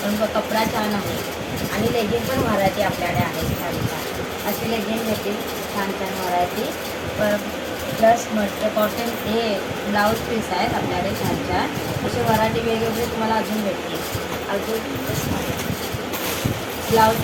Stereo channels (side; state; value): both; identical; correlation 1.00